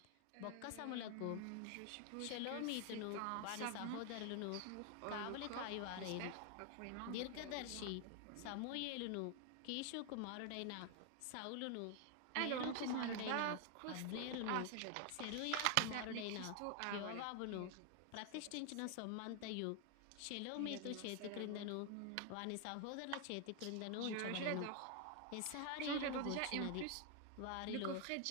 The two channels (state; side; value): different; both; correlation 0.00